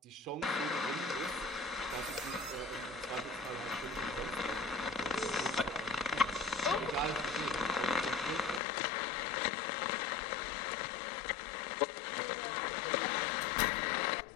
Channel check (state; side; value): drops out; right; at 8.6 s